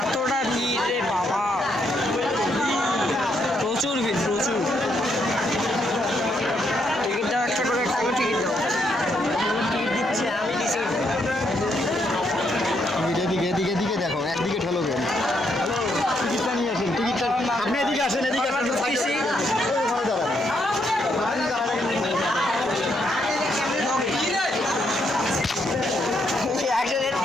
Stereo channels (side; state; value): both; normal; correlation 0.76